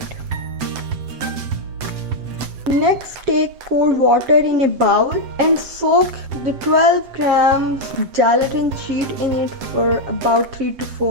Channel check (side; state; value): left; late; 7.8 ms